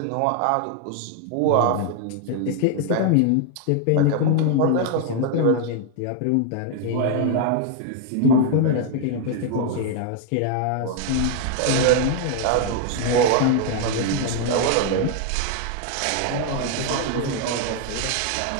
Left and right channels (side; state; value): both; different; correlation 0.00